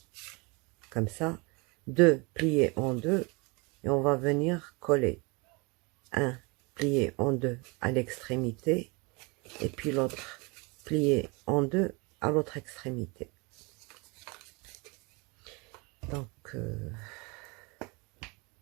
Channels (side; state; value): left; quieter; 28.4 dB